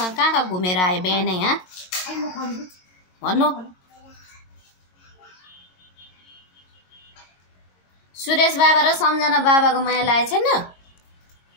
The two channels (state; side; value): late; right; 22 ms